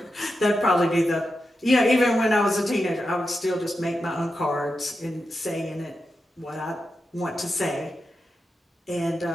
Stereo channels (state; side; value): normal; both; correlation 0.89